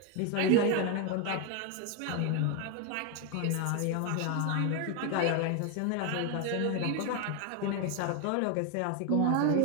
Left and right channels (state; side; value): different; both; correlation 0.01